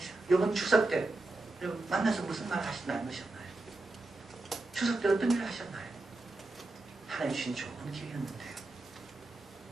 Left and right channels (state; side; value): quieter; left; 3.0 dB